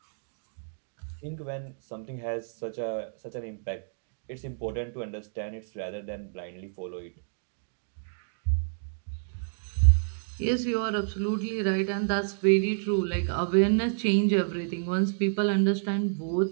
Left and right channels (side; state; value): left; silent; digital silence